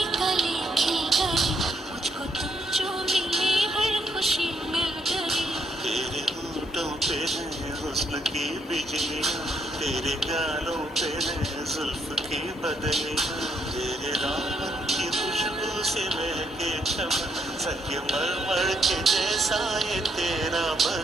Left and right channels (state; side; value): normal; both; correlation 0.74